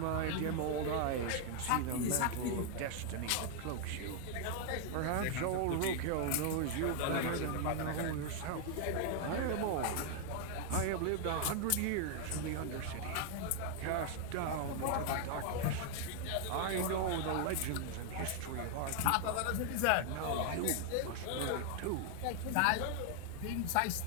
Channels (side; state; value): both; different; correlation 0.00